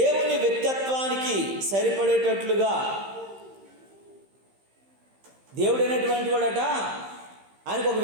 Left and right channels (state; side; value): late; left; 15 ms